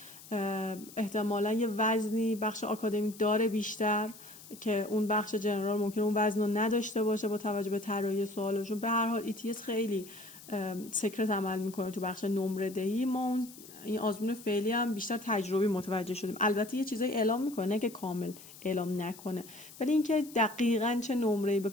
احتمالاً یه وزنی بخش آکادمیک داره بیشتر که اون بخش جنرال ممکنه اون وزن رو نداشته باشه با توجه به طراحی سوالشون. به هر حال ETS خیلی سکرت عمل میکنه تو بخش نمره دهی. ما این آزمون فعلی هم بیشتر تجربی متوجه شدیم. البته یه چیزایی اعلام میکنه، نه که کامل اعلام نکنه، ولی اینکه دقیقاً چه نمره‌ای به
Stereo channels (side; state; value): left; noise; hiss, 18 dB below the sound